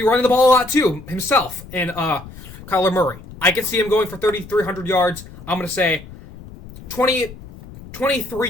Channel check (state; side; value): noise; left; rumble, 17 dB below the sound